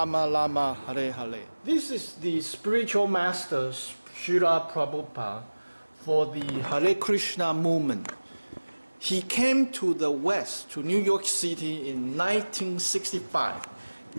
Rama, Hare Hare. This is the spiritual master, Srila Prabhupada, for the Hare Krishna movement. He came to the West, to New York City in 1965,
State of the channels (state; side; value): inverted; both; correlation -1.00